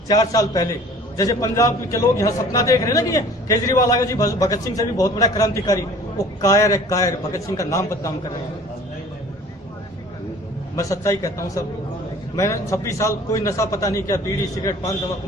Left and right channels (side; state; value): both; normal; correlation 0.48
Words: 4 साल पहले। जैसे पंजाब के लोग यहाँ सपना देख रहे हैं ना कि ये केजरीवाल आएगा जी, भगत सिंह से भी बहुत बड़ा क्रांतिकारी, वो कायर है, कायर। भगत सिंह का नाम बदनाम कर रहे हैं। मैं सच्चाई कहता हूँ सब, मैंने 26 साल कोई नशा पता नहीं किया, बीड़ी सिगरेट पान तंबाकू